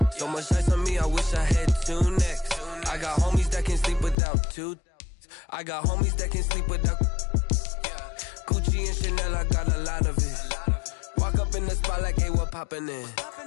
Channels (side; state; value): right; drops out; at 4.2 s